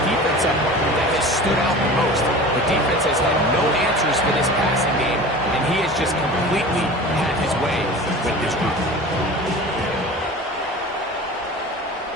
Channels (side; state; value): both; normal; correlation 0.37